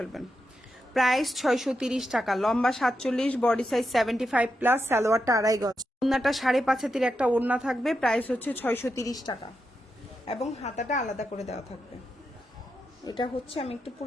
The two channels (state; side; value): normal; both; correlation 0.86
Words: প্রাইস 630 টাকা। লম্বা 47, বডি সাইজ 75 প্লাস, সালোয়ারটা 2.5 গজ, ওড়নাটা 5.5 হাতের একটা ওড়না থাকবে। প্রাইস হচ্ছে 630 টাকা এবং হাতাটা আলাদা করে দেওয়া থাকবে। এটা হচ্ছে, আমি একটু